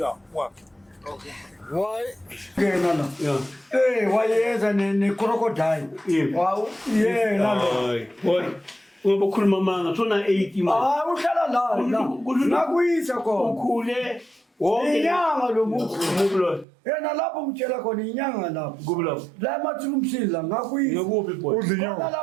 wa. Okay. Why? Kena la. Yeah. Eh, wayenza ne crocodile. Yeah. Wow. Yeah, nalo. Boy. Ngoba ukhuluma manga sona 80 manje. Ah, uhlala la. Nakuyisa khona. Ukhule. Wonke Inyanga lo muntu. Ngubulwa. Yena lapho ngitshela khona inyanga lapho. Ngubulwa. La mathulu umsila ngakuyisa. Ngakuphi boy? Khona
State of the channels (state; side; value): drops out; left; at 16.7 s